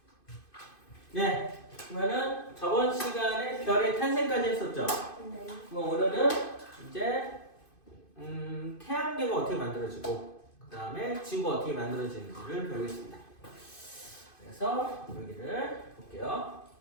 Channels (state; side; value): late; right; 2.5 ms